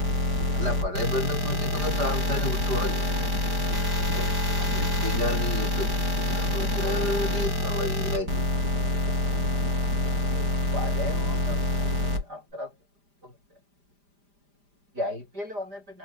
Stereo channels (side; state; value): left; late; 5.0 ms